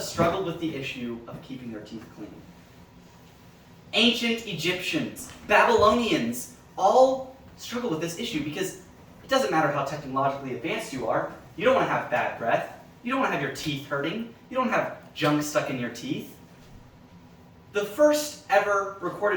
struggled with the issue of keeping their teeth clean. Ancient Egyptians, Babylonians, all struggle with this issue because it doesn't matter how technologically advanced you are. You don't want to have bad breath. You don't want to have your teeth hurting. You don't have junk stuck in your teeth. The first ever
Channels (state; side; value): identical; both; correlation 1.00